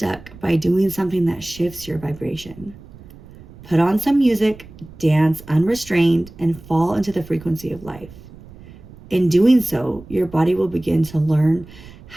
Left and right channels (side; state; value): right; noise; rumble, 20 dB below the sound